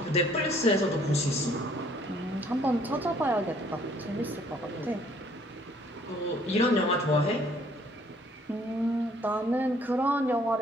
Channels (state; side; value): normal; both; correlation 0.61